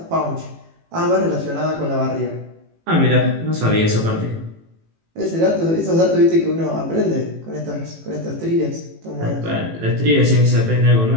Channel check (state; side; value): late; left; 18 ms